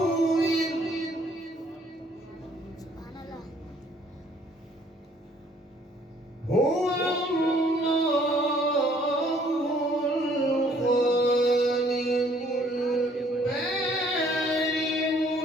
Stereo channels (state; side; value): normal; both; correlation 0.61